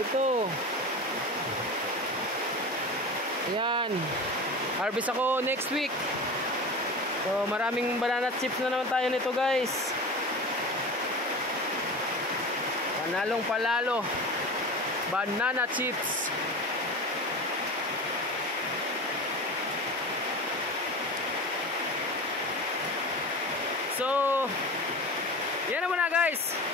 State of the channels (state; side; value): normal; both; correlation 0.30